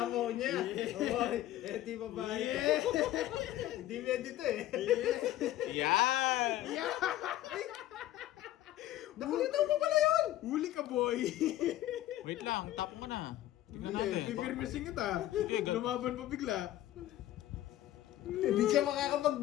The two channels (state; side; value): quieter; right; 14.0 dB